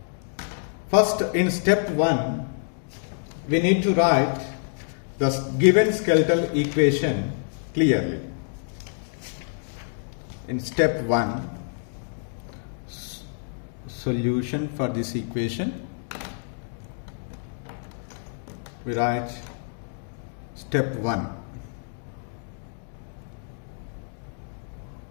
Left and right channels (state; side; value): silent; right; digital silence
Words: First, in step 1, we need to write the given skeletal equation clearly. In step 1, solution for this equation, we write step 1.